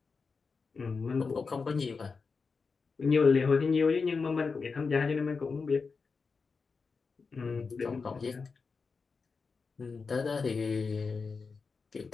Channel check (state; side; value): quieter; right; 4.8 dB